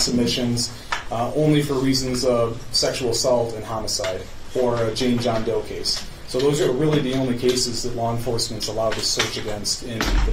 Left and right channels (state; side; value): identical; both; correlation 1.00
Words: only for reasons of sexual assault and homicide, or a Jane John Doe case. So those are really the only cases that law enforcement's allowed to search against in the